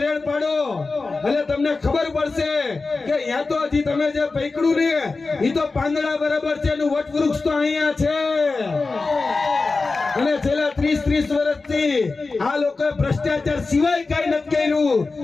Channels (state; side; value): quieter; right; 3.8 dB